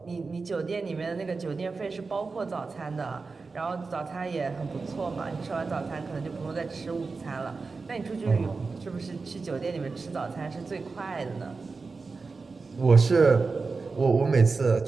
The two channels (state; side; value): quieter; left; 4.2 dB